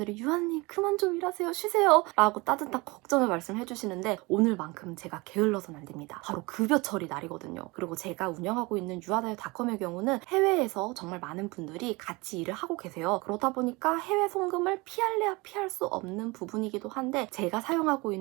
유아님 그만 좀 일하세요, 쉬세요 라고 따뜻한 걱정을 말씀해 주시는데 오늘만큼 제가 게을러서는 안 됩니다. 바로 급여 처리 날이거든요. 그리고 제가 운영하고 있는 유아다요닷컴의 경우는 해외에서 정말 많은 분들이 같이 일을 하고 계세요. 그러다 보니까 해외 송금을 피할래야 피할 수 없는 부분이기도 한데 제가 사용하고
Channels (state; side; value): quieter; left; 24.7 dB